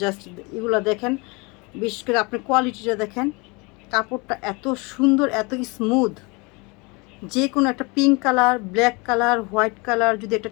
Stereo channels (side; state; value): right; quieter; 27.9 dB